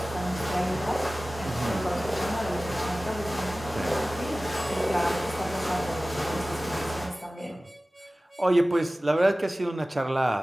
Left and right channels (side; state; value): both; normal; correlation 0.97